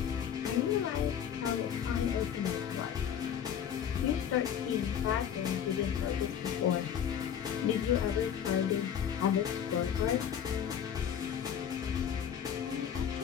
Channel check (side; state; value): right; quieter; 8.7 dB